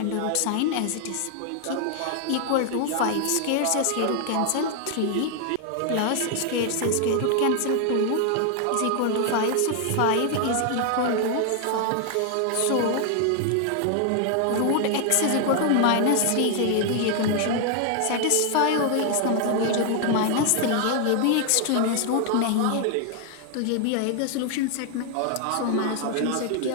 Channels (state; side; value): different; both; correlation 0.00